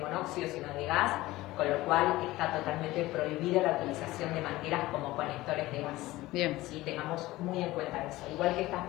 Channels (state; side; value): quieter; right; 18.0 dB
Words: monóxido, sino de gas, con lo cual está totalmente prohibida la utilización de mangueras como conectores de gas. Bien. Sí, tengamos muy en cuenta eso. Igual que estas